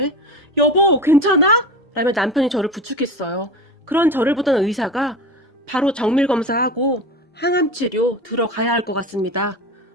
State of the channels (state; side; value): normal; both; correlation 0.29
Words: 여보 괜찮아? 라며 남편이 저를 부축했어요. 그런 저를 보던 의사가 바로 정밀검사하고 항암치료 들어가야 할 것 같습니다.